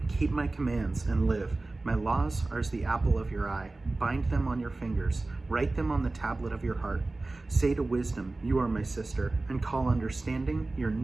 Keep my commands and live. My laws are as the apple of your eye. Bind them on your fingers. Write them on the tablet of your heart. Say to wisdom, you are my sister, and call understanding your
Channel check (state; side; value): quieter; left; 3.2 dB